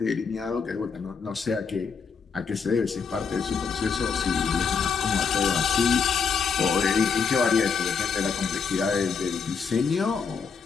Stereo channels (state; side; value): quieter; right; 5.8 dB